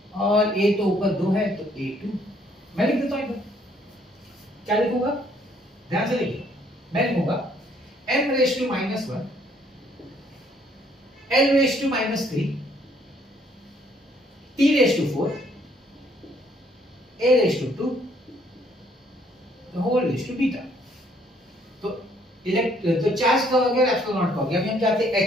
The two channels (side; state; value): both; normal; correlation 0.65